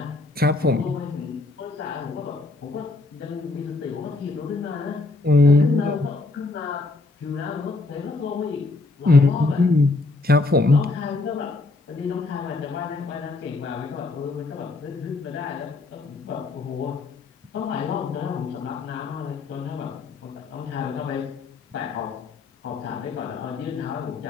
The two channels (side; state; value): right; quieter; 3.5 dB